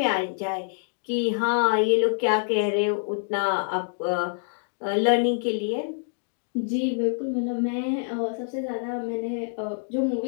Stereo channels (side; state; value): right; silent; digital silence